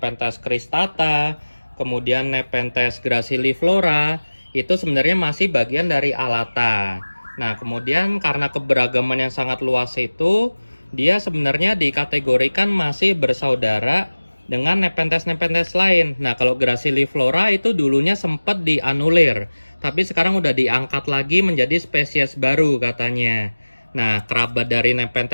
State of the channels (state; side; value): inverted; both; correlation -1.00